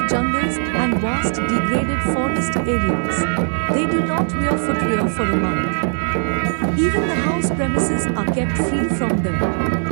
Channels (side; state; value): left; silent; digital silence